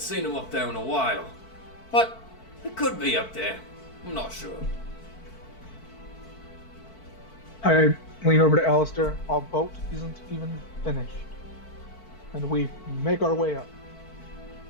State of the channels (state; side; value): late; right; 4.5 ms